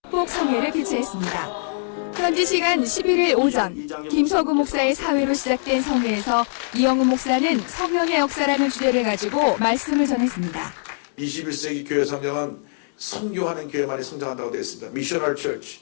성회를 개최했습니다. 현지 시간 11일 오전 김서구 목사의 사회로 시작된 성회에서 이영훈 목사는 성령의 역사라는 주제를 가지고 말씀을 전했습니다. 21세기 교회 성장은 선교하는 교회만이 성장한다고 되어 있습니다. 미셔널 처치,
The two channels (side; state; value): right; silent; digital silence